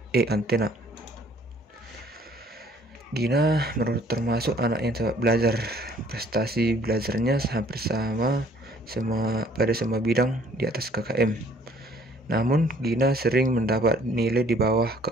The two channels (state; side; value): normal; both; correlation 0.58